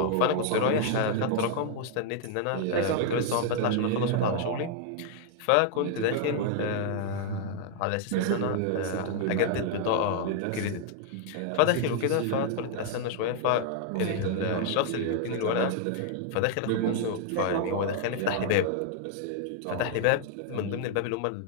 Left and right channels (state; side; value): different; both; correlation 0.00